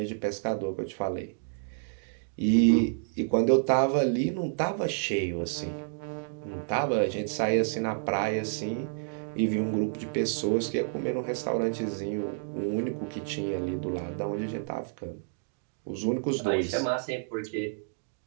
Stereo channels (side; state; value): left; silent; digital silence